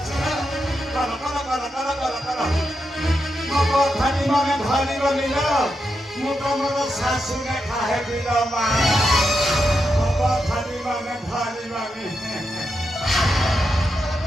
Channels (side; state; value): both; normal; correlation 0.85